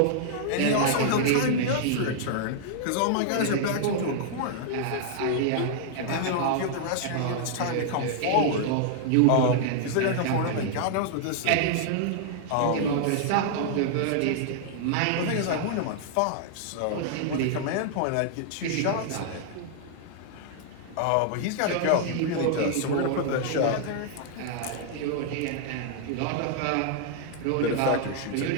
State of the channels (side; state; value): both; different; correlation -0.01